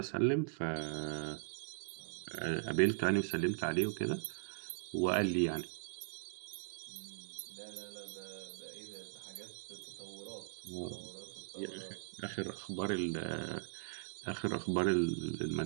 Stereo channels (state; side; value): silent; left; digital silence